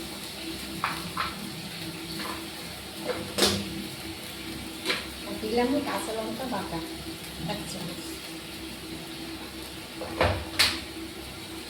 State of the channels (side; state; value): both; identical; correlation 1.00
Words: দিলাম, কাঁচা লঙ্কা বাটা এক চামচ।